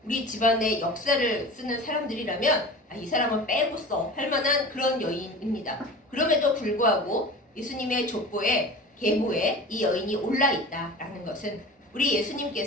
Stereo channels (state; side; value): normal; both; correlation 0.36